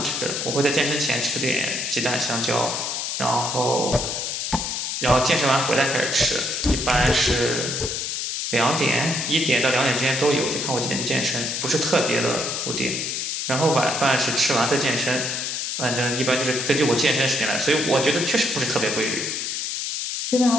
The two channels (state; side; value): noise; left; hiss, 2 dB below the sound